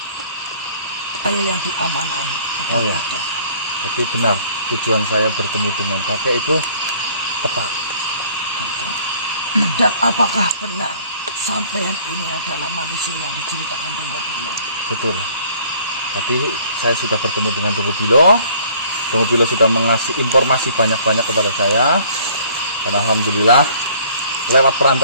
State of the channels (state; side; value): inverted; both; correlation -0.56